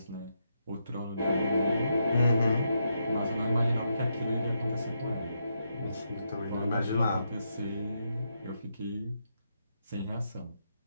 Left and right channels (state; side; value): inverted; both; correlation -0.81